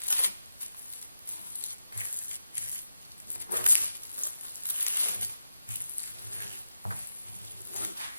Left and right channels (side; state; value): both; inverted; correlation -0.91